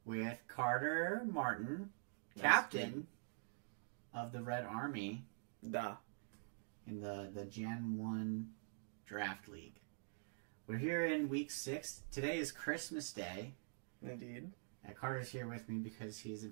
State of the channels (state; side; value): silent; left; digital silence